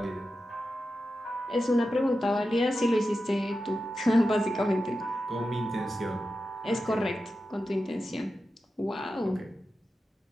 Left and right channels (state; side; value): normal; both; correlation 0.91